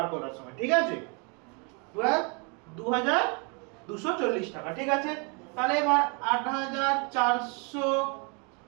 করার সময়, ঠিক আছে? 2240 টাকা, ঠিক আছে? তাহলে এবার 8400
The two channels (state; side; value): quieter; left; 34.1 dB